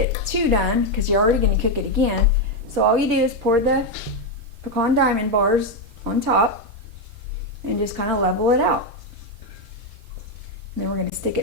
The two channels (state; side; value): normal; both; correlation 0.05